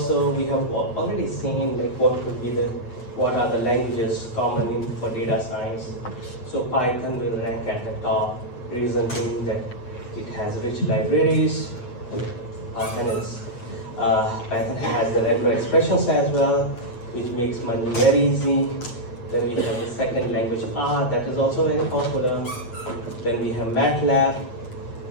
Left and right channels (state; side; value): late; right; 8.4 ms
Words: We have already seen like what are the languages common for data science. So Python will rank at the top, reason being that it has rich libraries. Python has the regular expressions as well, which makes money very easy. Then we have the second language R, that is also very popular. Then we have MATLAB.